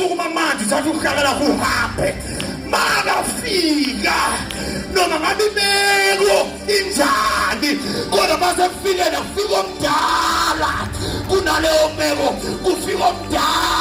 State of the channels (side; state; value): both; identical; correlation 1.00